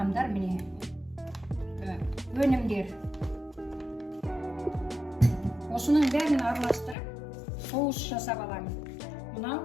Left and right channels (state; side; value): drops out; right; at 7.0 s